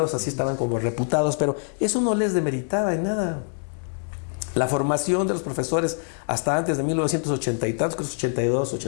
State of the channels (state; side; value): silent; right; 62 dB below the other